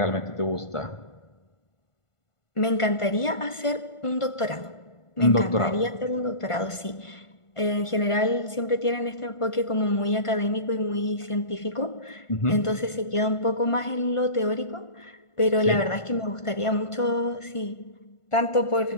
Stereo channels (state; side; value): late; right; 1.5 ms